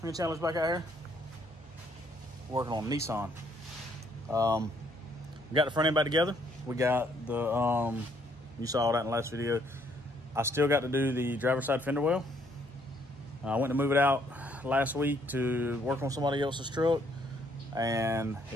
and Chandler's back out here working on Nissan. We got the front end back together. We got the, you saw that in the last video. I still got to do the driver's side fender well. I went to move it out last week to work on somebody else's truck, and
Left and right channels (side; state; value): both; normal; correlation 0.68